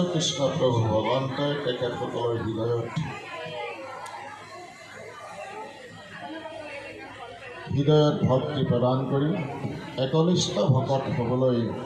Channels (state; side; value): identical; both; correlation 1.00